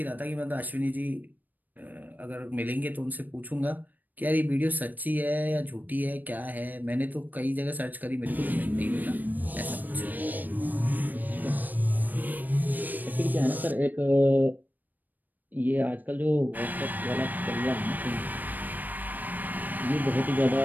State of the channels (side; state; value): left; late; 0.086 ms